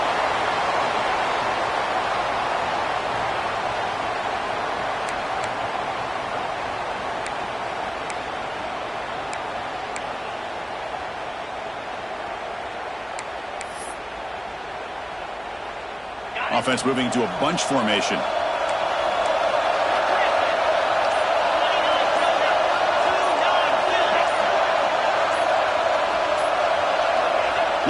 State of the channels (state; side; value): identical; both; correlation 1.00